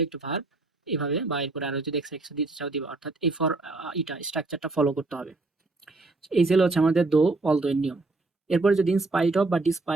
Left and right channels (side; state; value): left; quieter; 3.3 dB